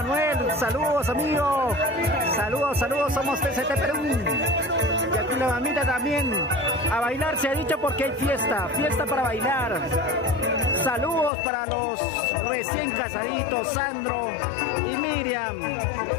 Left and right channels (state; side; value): drops out; right; at 11.3 s